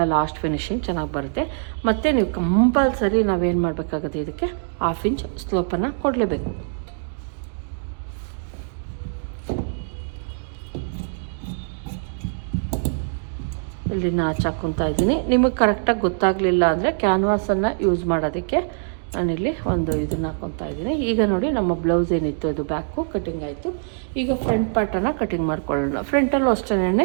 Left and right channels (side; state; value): left; silent; digital silence